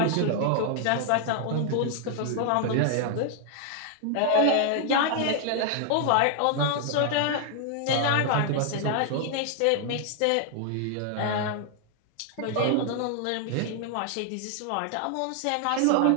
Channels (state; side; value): different; both; correlation 0.00